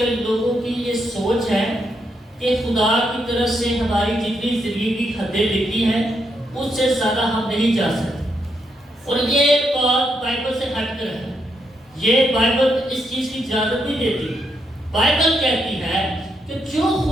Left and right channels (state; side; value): normal; both; correlation 0.80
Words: لوگوں کی یہ سوچ ہے کہ خدا کی طرف سے ہماری جتنی زندگی کی حدیں لکھی ہیں اس سے زیادہ ہم نہیں جا سکتے. اور یہ بات بائبل سے ہٹ کر ہے. یہ بائبل اس چیز کی اجازت نہیں دیتی. بائبل کہتی ہے کہ جو